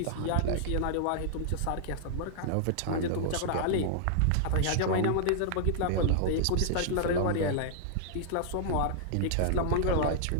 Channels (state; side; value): different; both; correlation -0.01